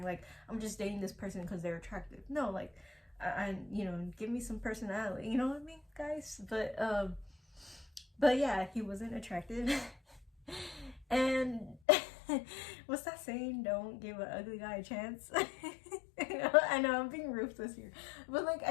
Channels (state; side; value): drops out; right; at 11.8 s